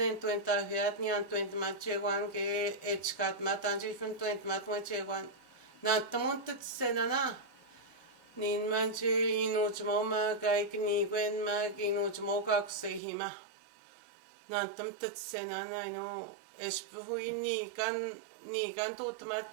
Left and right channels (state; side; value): drops out; left; at 13.0 s